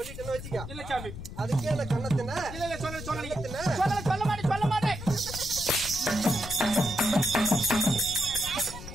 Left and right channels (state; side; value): noise; left; rumble, 10 dB below the sound